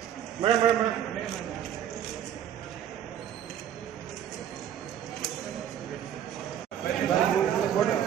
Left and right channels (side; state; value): left; quieter; 10.0 dB